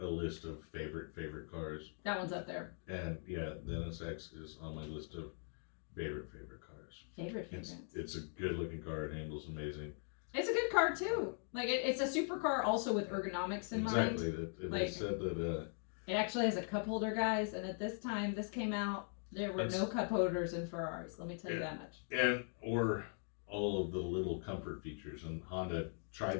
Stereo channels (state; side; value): silent; right; 50 dB below the other